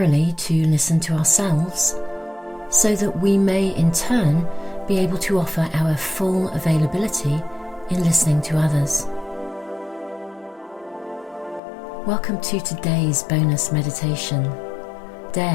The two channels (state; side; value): drops out; right; at 11.6 s